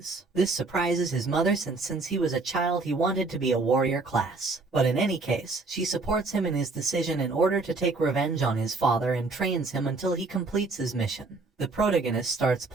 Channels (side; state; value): left; quieter; 3.7 dB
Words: This surprises his mother since he was a child he wanted to be a warrior class. But in any case, she supports him in his decision in order to take revenge on his father and trains him until he completes his mission. The protagonist starts